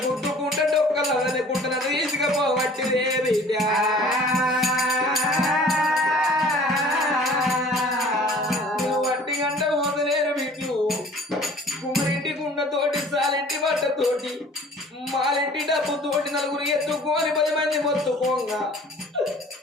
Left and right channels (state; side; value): normal; both; correlation 0.49